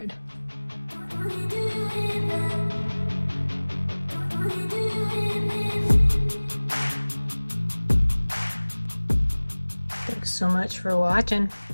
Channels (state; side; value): inverted; both; correlation -1.00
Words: Thanks so much for watching.